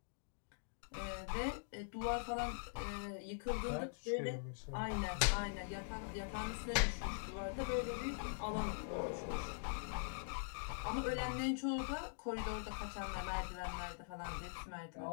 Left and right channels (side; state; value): right; silent; digital silence